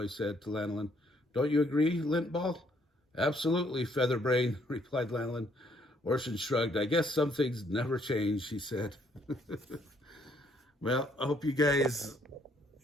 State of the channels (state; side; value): normal; both; correlation 0.67